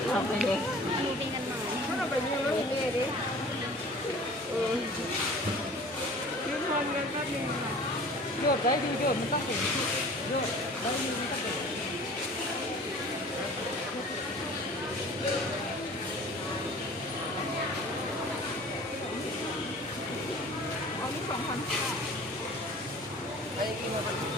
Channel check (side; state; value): both; normal; correlation 0.45